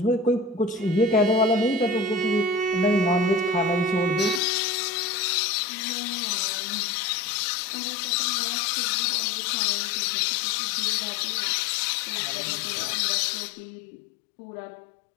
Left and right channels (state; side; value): drops out; right; at 4.4 s